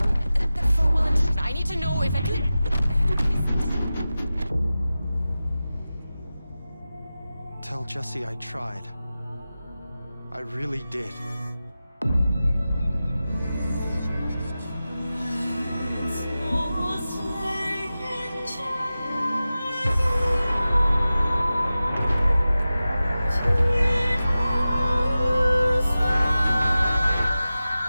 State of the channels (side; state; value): both; inverted; correlation -0.95